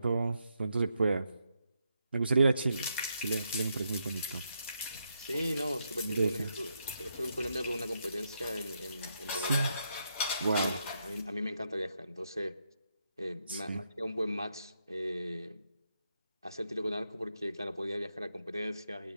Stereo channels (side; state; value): both; inverted; correlation -0.81